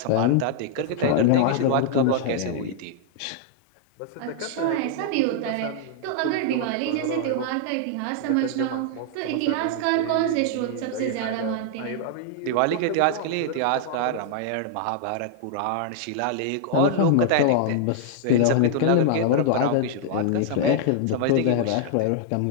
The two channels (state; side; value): different; both; correlation -0.01